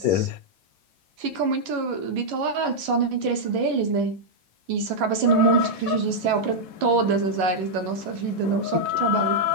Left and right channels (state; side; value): late; left; 11 ms